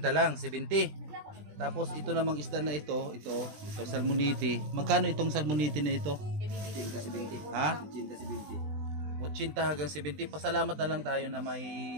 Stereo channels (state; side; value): late; left; 20 ms